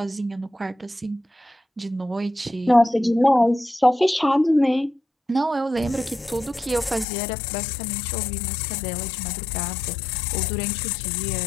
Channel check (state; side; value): drops out; right; at 7.1 s